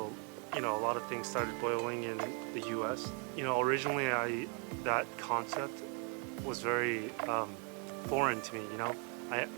a lot of things started boiling in the U.S. Originally that concept was very foreign to me. I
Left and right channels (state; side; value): quieter; left; 37.2 dB